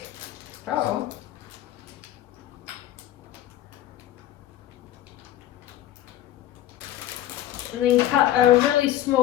Oh. And then cut a really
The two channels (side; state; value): right; quieter; 13.1 dB